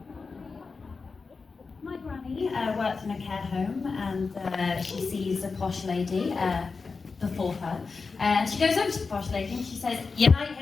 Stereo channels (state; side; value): quieter; right; 4.5 dB